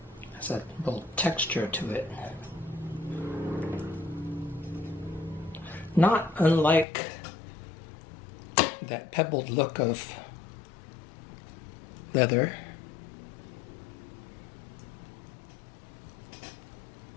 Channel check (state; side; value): drops out; right; at 6.9 s